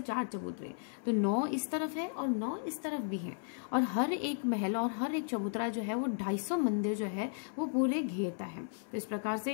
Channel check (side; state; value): right; silent; 55 dB below the other